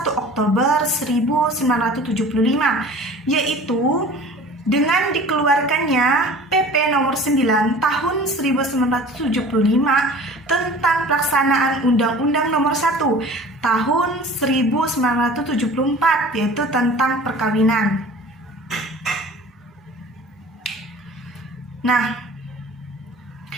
Oktober 1975, yaitu dengan dikeluarkannya PP nomor 9 tahun 1975 tentang pelaksanaan Undang-Undang nomor 1 tahun 1974, yaitu tentang perkawinan. Nah,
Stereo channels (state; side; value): normal; both; correlation 0.43